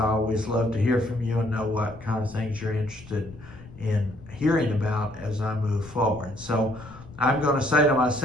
always love to hear from you and know what kind of things you're interested in hearing about as I move forward. So I'm going to say to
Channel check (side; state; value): left; noise; rumble, 18 dB below the sound